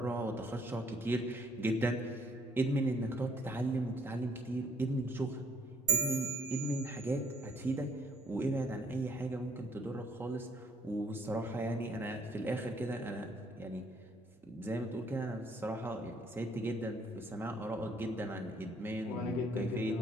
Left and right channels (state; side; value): normal; both; correlation 0.64